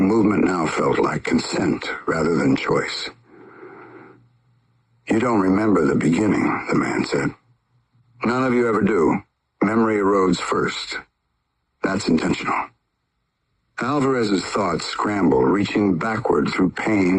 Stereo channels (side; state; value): both; identical; correlation 1.00